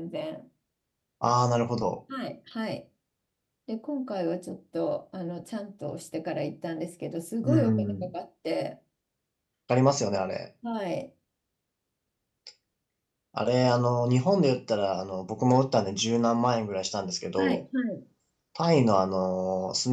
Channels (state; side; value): identical; both; correlation 1.00